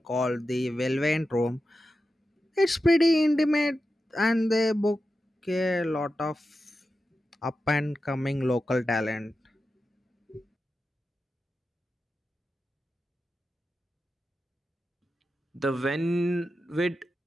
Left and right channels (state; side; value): normal; both; correlation 0.91